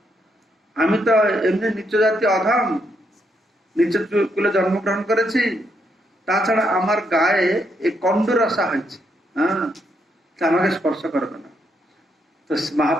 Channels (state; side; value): normal; both; correlation 0.77